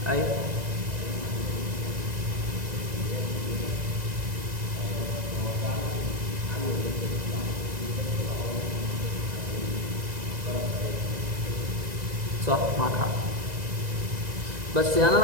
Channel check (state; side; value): late; left; 1.9 ms